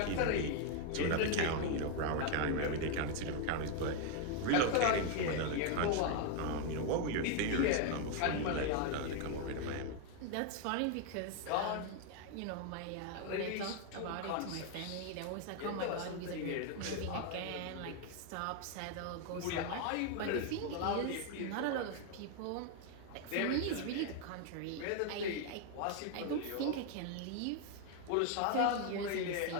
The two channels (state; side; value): different; both; correlation 0.00